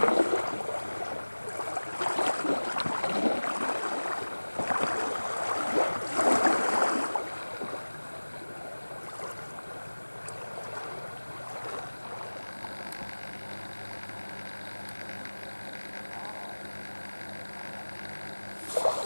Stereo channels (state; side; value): inverted; both; correlation -1.00